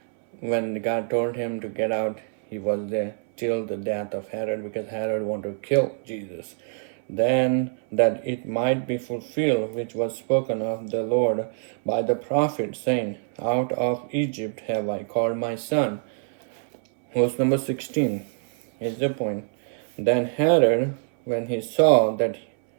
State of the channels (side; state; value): left; silent; 62 dB below the other